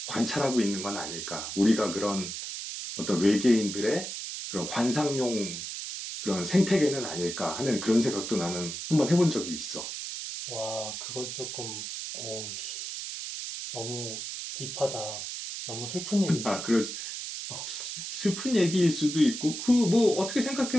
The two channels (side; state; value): right; noise; hiss, 6 dB below the sound